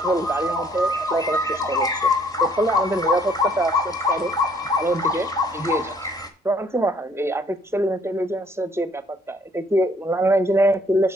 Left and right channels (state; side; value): normal; both; correlation 0.63